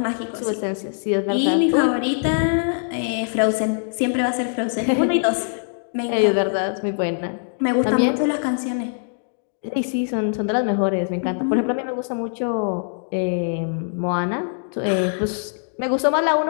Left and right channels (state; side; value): silent; right; digital silence